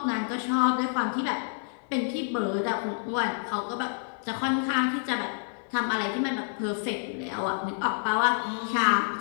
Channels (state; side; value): silent; right; 59 dB below the other